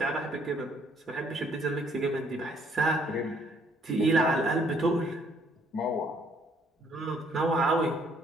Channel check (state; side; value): normal; both; correlation 0.65